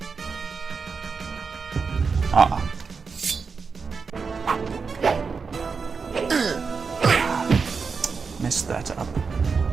Ah. Messed that up.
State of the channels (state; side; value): quieter; left; 5.2 dB